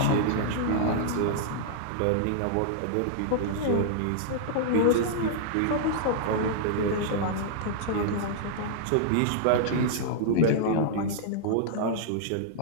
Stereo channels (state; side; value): different; both; correlation -0.02